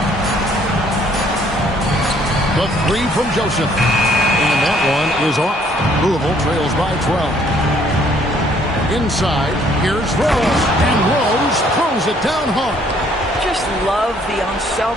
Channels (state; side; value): normal; both; correlation 0.63